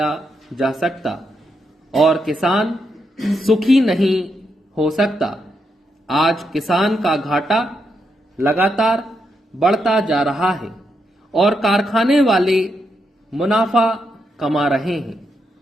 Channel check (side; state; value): both; normal; correlation 0.81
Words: जा सकता और किसान सुखी नहीं हो सकता। आज किसान का घाटा लगातार बढ़ता जा रहा है और कारखाने वाले मुनाफा कमा रहे हैं।